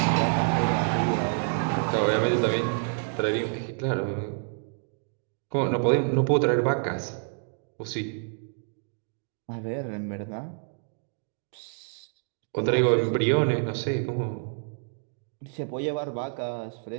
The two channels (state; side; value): silent; left; 59 dB below the other